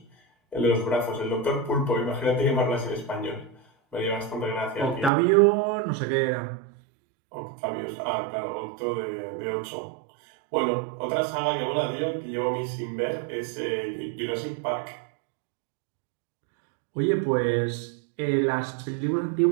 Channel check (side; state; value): left; drops out; at 5.1 s